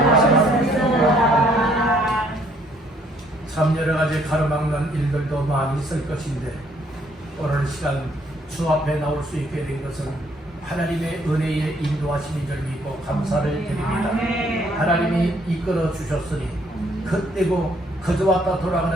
참 여러 가지 가로막는 일들도 많이 있을 것인데 오늘 시간 주 앞에 나올 수 있게 된 것은 하나님의 은혜의 인도하심인 줄 믿고 감사를 드립니다. 하나님이 이끌어 주셨으니 그때고 그저 왔다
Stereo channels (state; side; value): normal; both; correlation 0.65